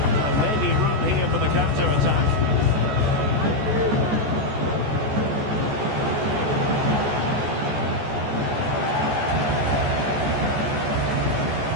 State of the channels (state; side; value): late; left; 14 ms